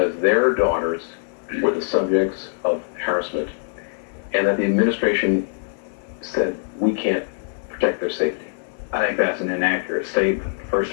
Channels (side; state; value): right; silent; 64 dB below the other